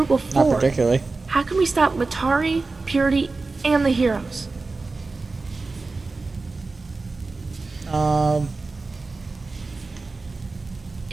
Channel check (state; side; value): quieter; left; 3.7 dB